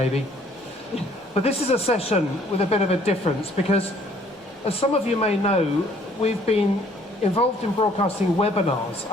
But this is a session with a bit of a difference because, as some of you may know, we've been involved in broadcasting webinars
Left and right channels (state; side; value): normal; both; correlation 0.60